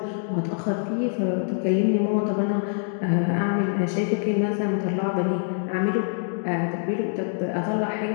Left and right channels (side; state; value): right; silent; digital silence